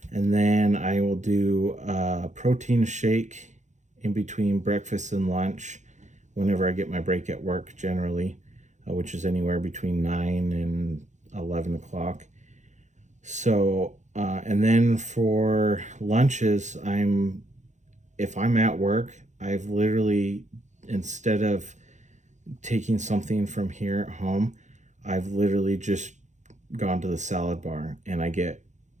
and then I will do a protein shake in between breakfast and lunch whenever I get my break at work, generally, which is anywhere between 9 and 11 o'clock. So and then for lunches, if I'm at work, I've literally, instead of taking something from here at home, I've literally just gone to the salad bar, and I get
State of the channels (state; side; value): late; left; 0.35 ms